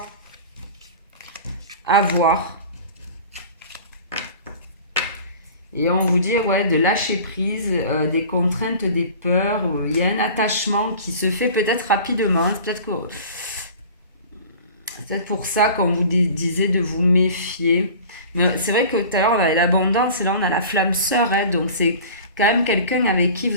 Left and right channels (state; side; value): inverted; both; correlation -0.41